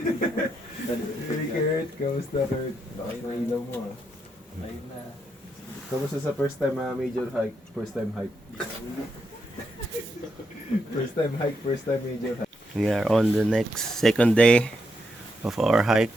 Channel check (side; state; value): both; normal; correlation 0.81